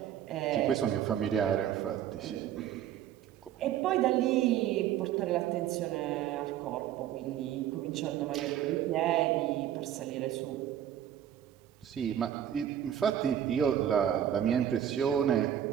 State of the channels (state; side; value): quieter; left; 10.6 dB